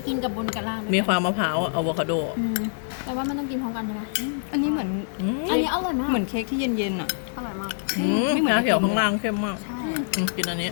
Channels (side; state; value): right; silent; digital silence